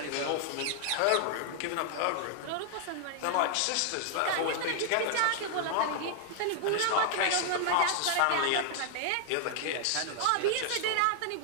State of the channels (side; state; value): both; different; correlation 0.00